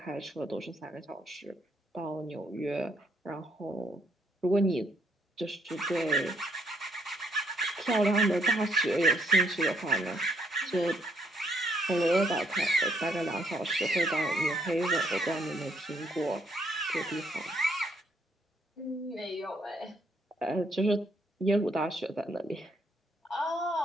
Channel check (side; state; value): both; normal; correlation 0.71